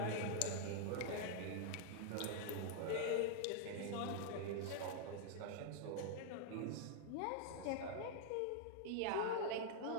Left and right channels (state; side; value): different; both; correlation -0.01